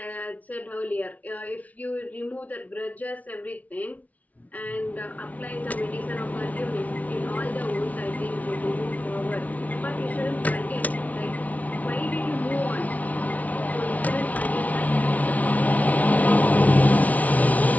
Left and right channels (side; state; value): right; late; 0.071 ms